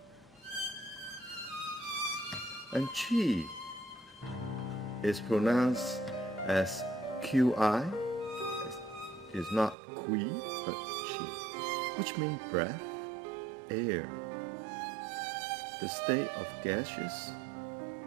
And Qi is pronounced as Qi. It's not Qi, but Qi, which means breath, air, the state of gaseous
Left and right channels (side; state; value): left; drops out; at 9.8 s